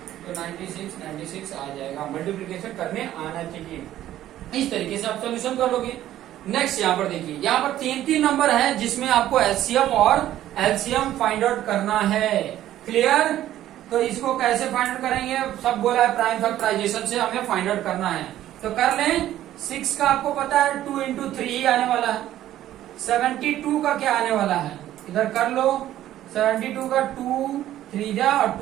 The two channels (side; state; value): left; quieter; 13.0 dB